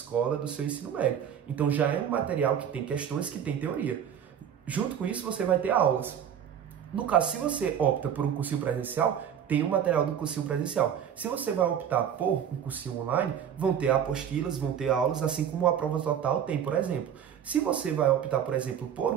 do seu ensino médio. Então já é um material que tem questões, que tem teoria. Junto com isso você vai ter aulas. No caso, se você opta por um cursinho presencial, tem o material do cursinho presencial. Se você vai optar por um cursinho online, vão ter apostilas, vão ter aulas, assim como a prova total tem, por exemplo. Se você vai optar, por exemplo, por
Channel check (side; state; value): left; quieter; 8.8 dB